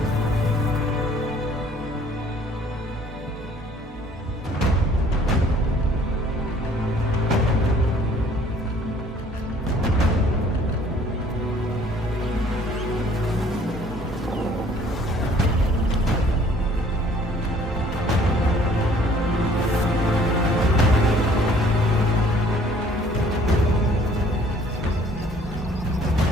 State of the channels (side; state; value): both; normal; correlation 0.57